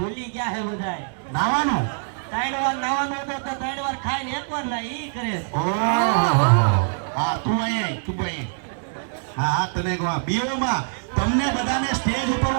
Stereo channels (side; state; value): left; silent; digital silence